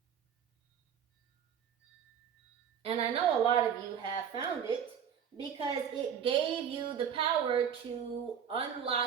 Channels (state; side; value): quieter; left; 8.2 dB